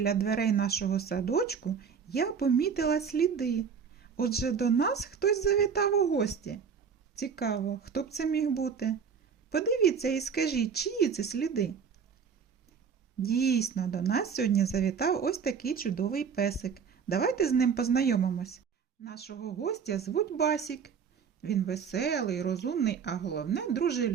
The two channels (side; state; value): left; quieter; 6.5 dB